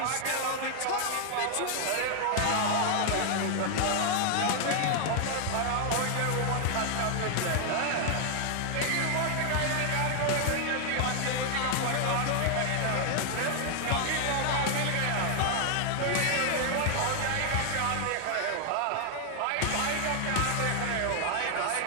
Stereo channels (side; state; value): both; different; correlation 0.00